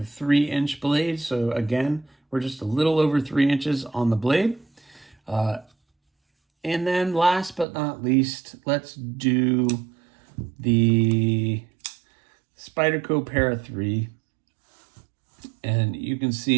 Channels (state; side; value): drops out; left; at 7.7 s